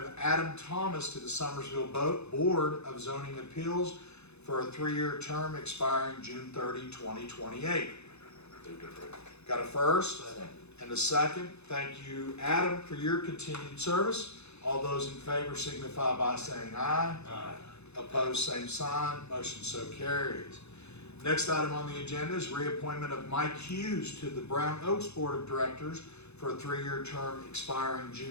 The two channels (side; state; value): right; late; 0.80 ms